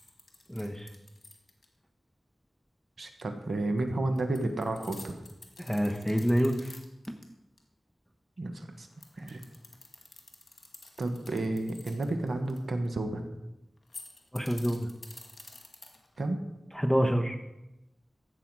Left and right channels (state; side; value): normal; both; correlation 0.96